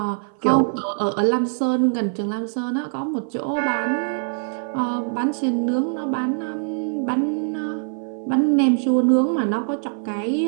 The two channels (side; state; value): left; silent; 58 dB below the other